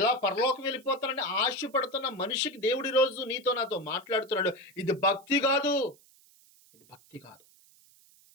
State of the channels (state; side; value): noise; right; hiss, 28 dB below the sound